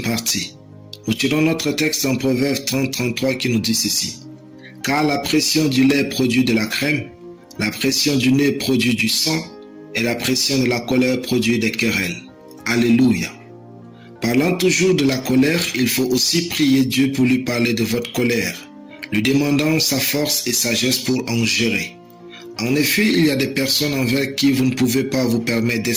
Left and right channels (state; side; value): identical; both; correlation 1.00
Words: partie. Nous tirons notre texte en Proverbe 30-33 qui nous dit ceci. « Car la pression du lait produit de la crème, la pression du nez produit du sang, et la pression de la colère produit des querelles. » Alléluia. Parlant toujours de la colère, il faut aussi prier Dieu pour lui parler de votre colère, lui demandant sa force et sagesse pour en gérer. En effet, il y a des personnes envers qui vous ne pouvez pas vous permettre